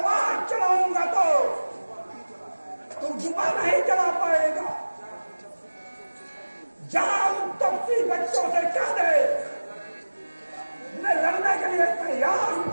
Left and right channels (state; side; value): inverted; both; correlation -1.00